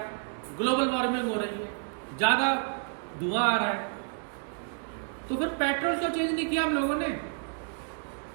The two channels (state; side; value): silent; left; 58 dB below the other